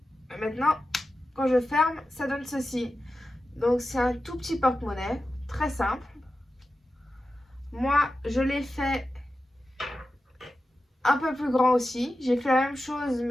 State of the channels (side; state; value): both; normal; correlation 0.92